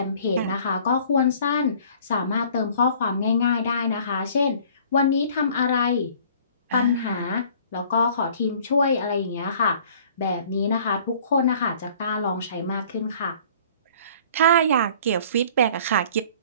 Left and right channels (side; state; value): both; inverted; correlation -0.52